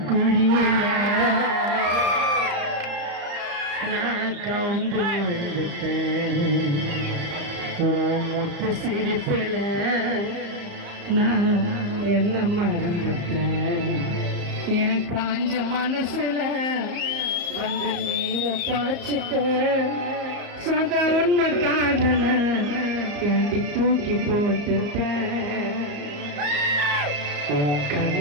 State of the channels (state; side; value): late; left; 34 ms